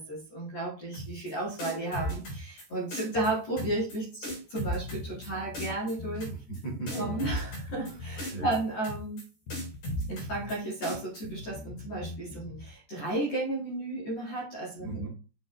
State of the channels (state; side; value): late; right; 14 ms